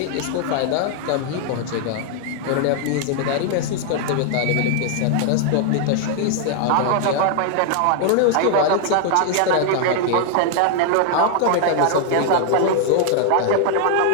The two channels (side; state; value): both; different; correlation 0.00